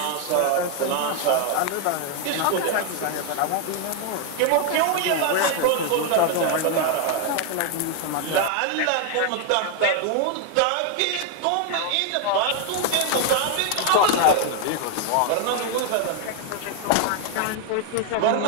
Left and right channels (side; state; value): both; different; correlation 0.01